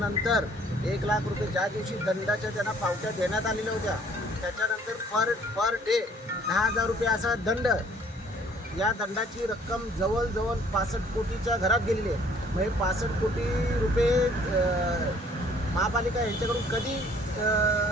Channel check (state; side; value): normal; both; correlation 0.58